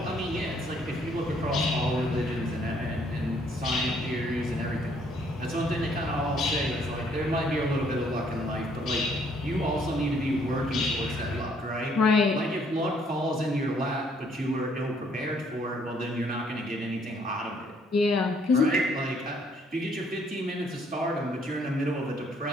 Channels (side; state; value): both; normal; correlation 0.66